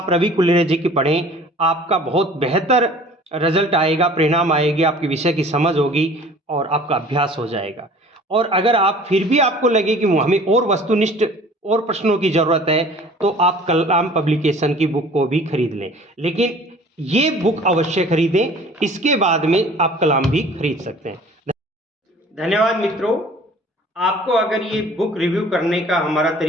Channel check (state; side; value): normal; both; correlation 0.48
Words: रवि कुलरिया जी की पढ़ें। आपका बहुत बेहतर रिजल्ट आएगा, परिणाम आएगी, आपकी विषय की समझ होगी और आपका अभ्यास हो जाएगा। और अगर आप फिर भी आपको लगे कि हमें और वस्तुनिष्ठ और प्रश्नों की ज़रूरत है, तो आप कलाम पब्लिकेशन की बुक को भी खरीद लें। लेकिन ये बुक अवश्य खरीदें, इसके बाद में आप कलाम भी खरीद सकते हैं। धन्यवाद मित्रों। आपको अगर ये बुक रिव्यू करने का हमारा